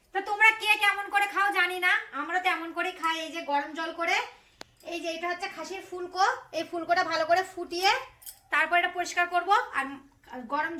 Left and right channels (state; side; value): identical; both; correlation 1.00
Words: তো তোমরা কে কেমন করে খাও জানি না, আমরা তো এমন করে খাই। এই যে গরম জল করে, এই যে এটা হচ্ছে খাসির ফুলকো, এই ফুলকোটা ভালো করে ফুটিয়ে তারপর এটা পরিষ্কার করব। আর গরম